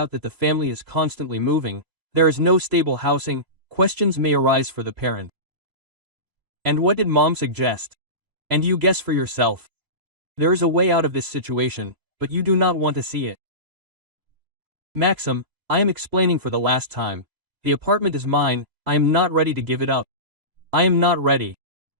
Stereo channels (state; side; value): late; left; 3.0 ms